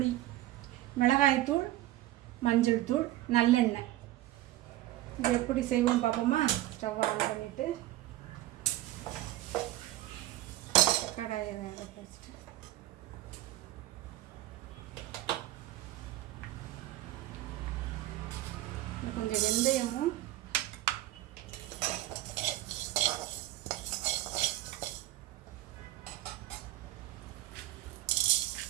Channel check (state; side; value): quieter; left; 15.7 dB